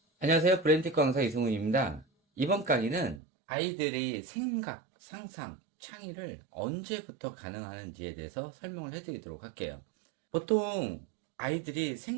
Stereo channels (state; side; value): drops out; left; at 3.2 s